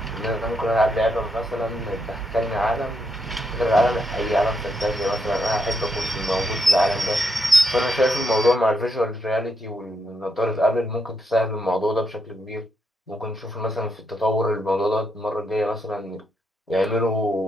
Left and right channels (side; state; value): both; normal; correlation 0.79